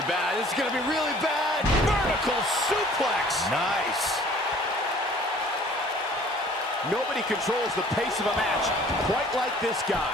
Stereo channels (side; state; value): both; normal; correlation 0.52